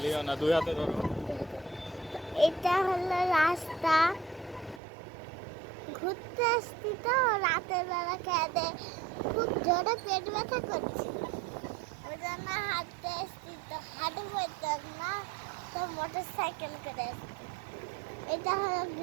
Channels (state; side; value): drops out; left; at 4.8 s